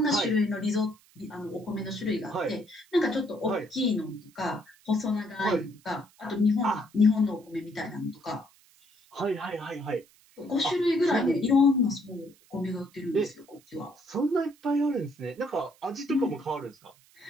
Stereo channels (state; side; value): noise; right; hiss, 29 dB below the sound